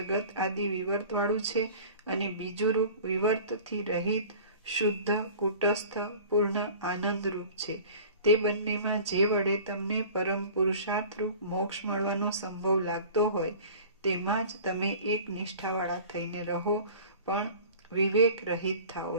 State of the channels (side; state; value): both; inverted; correlation -0.41